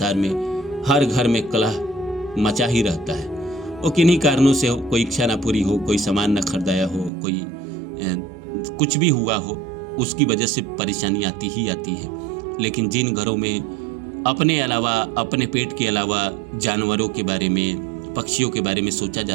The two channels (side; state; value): left; drops out; at 7.1 s